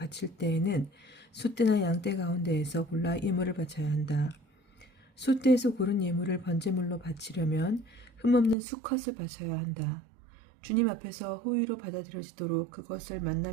때에는 숫대나 양떼 가운데에서 골라 예물을 바쳐야 한다. 숫대에서 고른 예물을 번제물로 바치려면 흠없는 수컷을 바쳐야 한다. 주님 앞에서 호의로 받아들여지도록 그것을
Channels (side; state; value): left; drops out; at 8.6 s